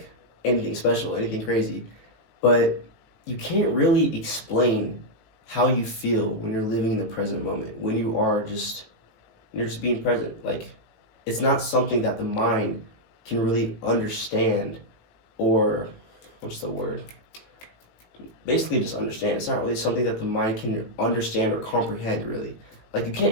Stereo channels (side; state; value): right; late; 18 ms